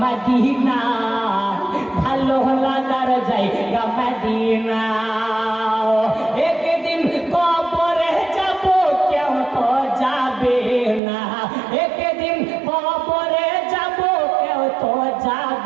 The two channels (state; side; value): drops out; left; at 11.0 s